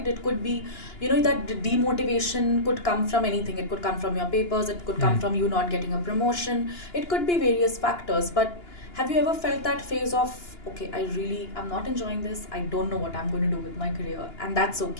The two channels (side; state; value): right; late; 2.9 ms